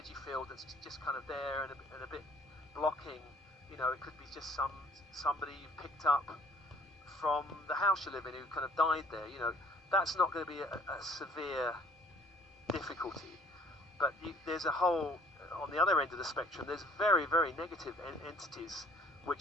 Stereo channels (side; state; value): both; normal; correlation 0.57